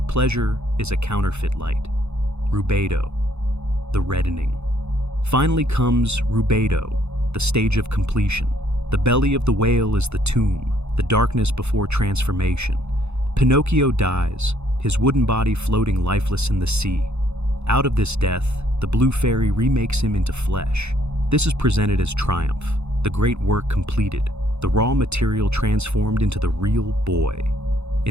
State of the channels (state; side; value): late; left; 0.81 ms